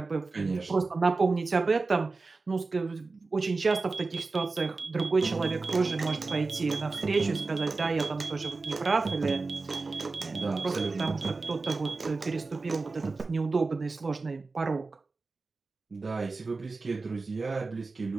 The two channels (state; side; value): quieter; left; 3.8 dB